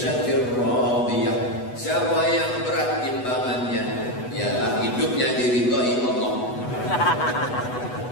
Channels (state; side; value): late; right; 8.1 ms